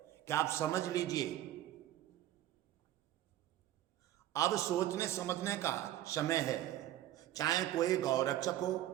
कि आप समझ लीजिए, अब सोचने समझने का समय है। चाहे कोई गौरक्षक हो,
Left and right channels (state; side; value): quieter; left; 13.4 dB